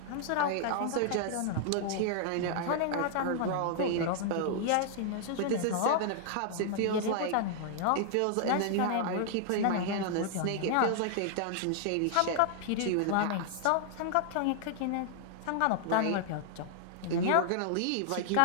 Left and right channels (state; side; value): different; both; correlation -0.01